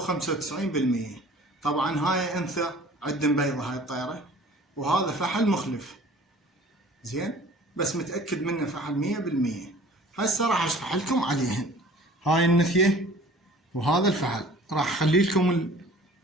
طبعا هاي انثى عندن بيضة هاي الطيرة، وهذا فحل مخلف زين، بس متأكد منه فحل 100%. هسه راح اشرح لكم عليهن. هاي النثية وهذا الفحل راح اخلي لكم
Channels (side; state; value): both; normal; correlation 0.48